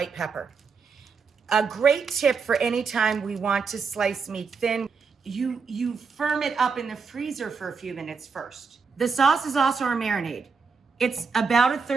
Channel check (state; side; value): quieter; left; 5.2 dB